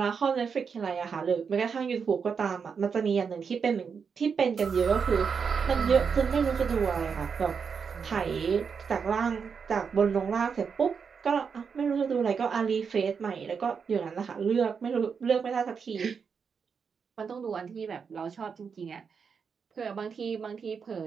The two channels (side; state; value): left; quieter; 6.1 dB